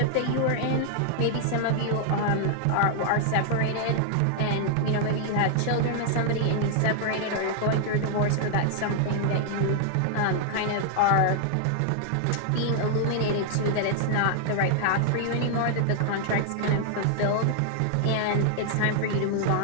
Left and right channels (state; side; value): different; both; correlation 0.00